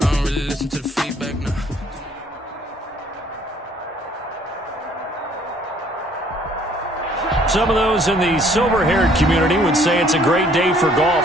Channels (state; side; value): normal; both; correlation 0.60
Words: don't really listen to the feedback, no. Some of those in the silver-haired community would say it's a great day for